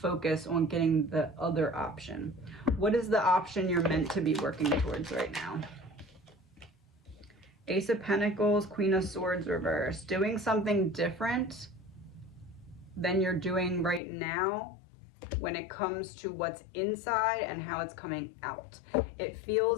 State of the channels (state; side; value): drops out; right; at 14.0 s